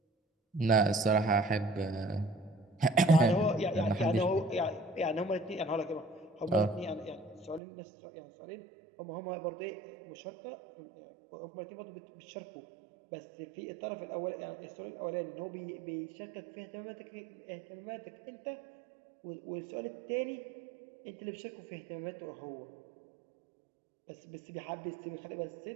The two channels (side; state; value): left; drops out; at 7.6 s